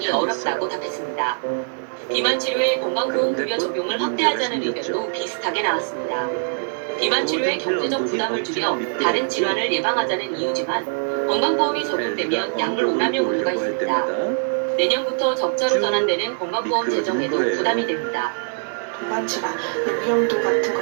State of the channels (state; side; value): silent; left; 64 dB below the other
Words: 어렵다고 답했습니다. 비만 치료의 건강보험급여 적용을 확대하자는 의견도 비슷하게 나왔습니다. 비만 치료의 경제적 부담을 줄여 다른 질환을 예방하자는 이유지만 건강보험이 적용되면 약물 오남용 우려가 있습니다. 내년부터 적자로 전환되는 건강보험 재정에도 부담이 됩니다. 동반질환, 위험도 같은